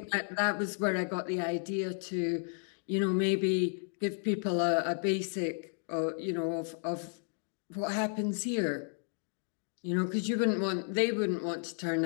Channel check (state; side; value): silent; right; 56 dB below the other